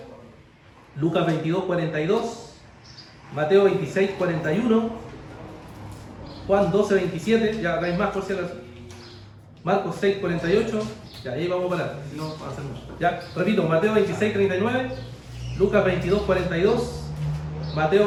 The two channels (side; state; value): both; identical; correlation 1.00